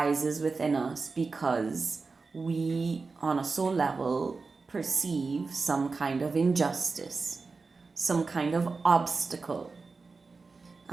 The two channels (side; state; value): left; quieter; 4.2 dB